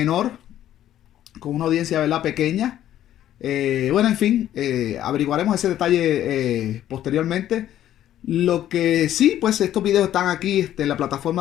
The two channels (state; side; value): quieter; right; 12.0 dB